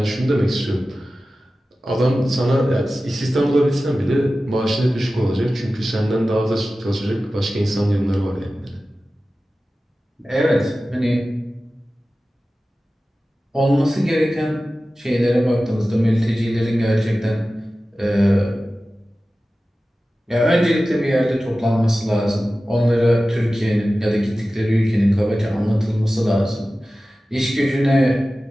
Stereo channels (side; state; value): both; normal; correlation 0.95